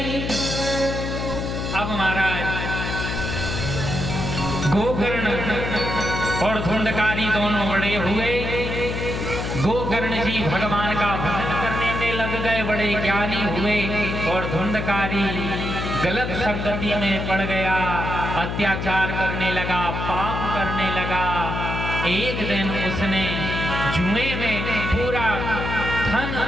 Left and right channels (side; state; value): left; noise; hum, 3 dB below the sound